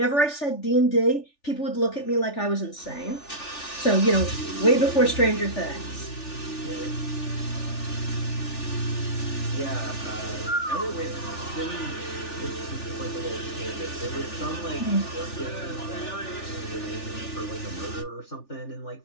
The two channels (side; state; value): right; late; 3.4 ms